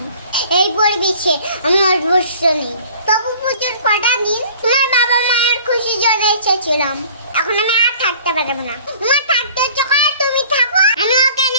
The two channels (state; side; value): inverted; both; correlation -0.50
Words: এই পরিবেশে আমি অভ্যস্ত নেই। তবু পুজোর কটা দিন তোমার বাবা মায়ের খুশির জন্য এসেছিলাম, এখন আমি আর থাকতে পারবো না। তোমার থাকতে ইচ্ছে করে তুমি থাকো, আমি ওকে